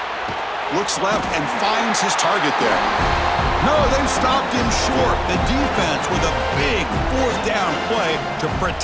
Looks left and finds his target there. No, they've stopped him short. The defense with a big fourth down play to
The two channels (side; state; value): both; identical; correlation 1.00